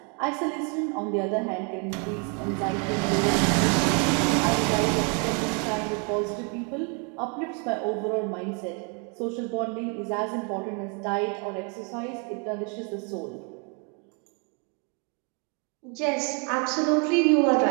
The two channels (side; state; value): left; quieter; 36.5 dB